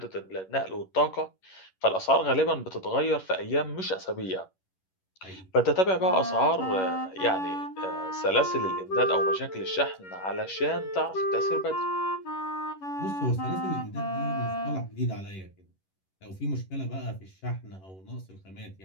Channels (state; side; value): late; right; 11 ms